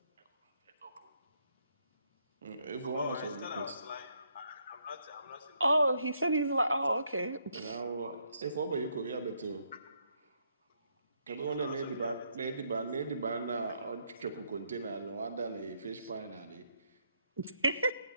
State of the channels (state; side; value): inverted; both; correlation -0.74